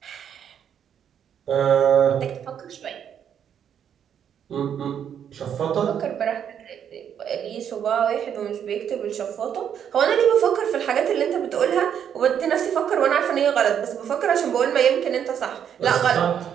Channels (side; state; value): left; quieter; 8.7 dB